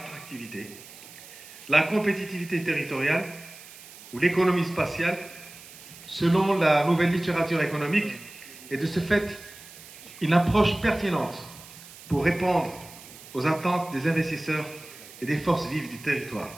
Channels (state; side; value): noise; right; hiss, 18 dB below the sound